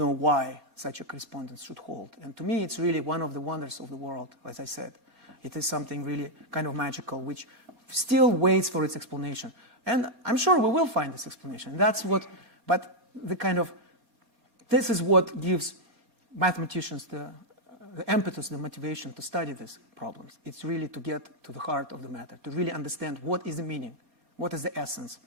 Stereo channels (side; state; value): left; late; 4.2 ms